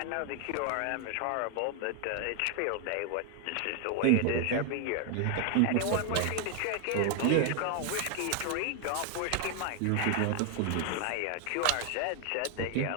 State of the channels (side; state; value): both; different; correlation 0.00